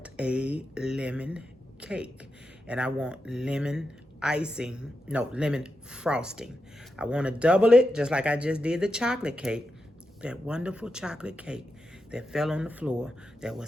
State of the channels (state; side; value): normal; both; correlation 0.88